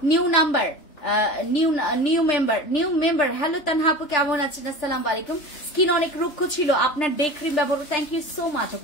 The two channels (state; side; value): late; right; 3.3 ms